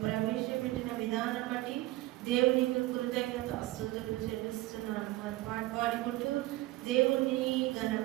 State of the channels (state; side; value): quieter; left; 18.0 dB